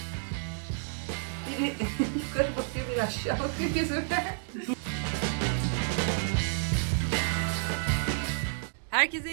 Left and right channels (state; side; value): silent; left; digital silence